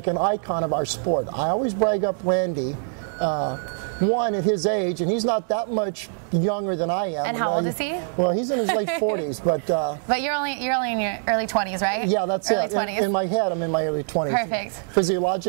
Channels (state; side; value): silent; left; 63 dB below the other